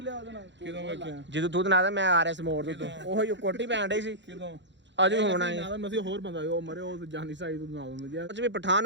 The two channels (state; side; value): late; left; 0.53 ms